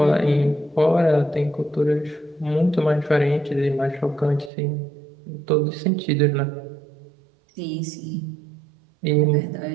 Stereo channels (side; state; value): left; drops out; at 4.5 s